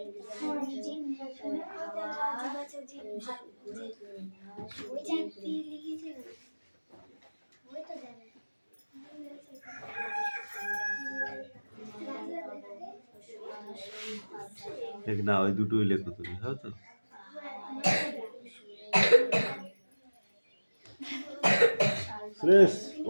মেঘনা ওই দুটোই লেখো তুমি, হ্যাঁ তো? সুরেশ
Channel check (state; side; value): inverted; both; correlation -1.00